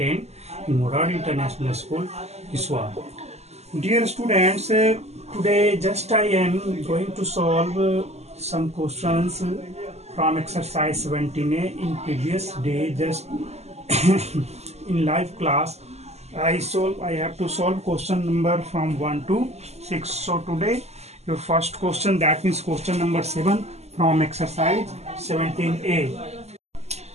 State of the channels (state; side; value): late; left; 0.31 ms